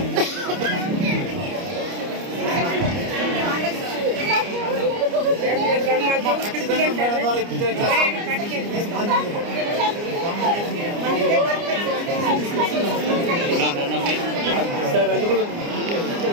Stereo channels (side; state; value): left; late; 29 ms